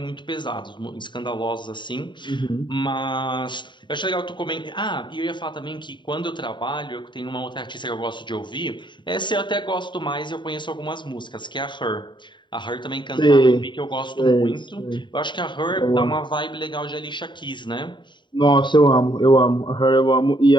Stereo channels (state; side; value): late; right; 0.23 ms